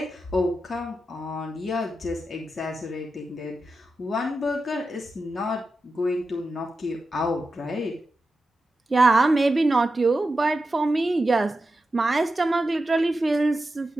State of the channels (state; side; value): normal; both; correlation 0.91